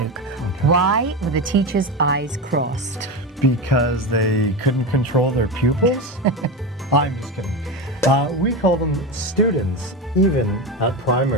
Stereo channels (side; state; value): both; normal; correlation 0.19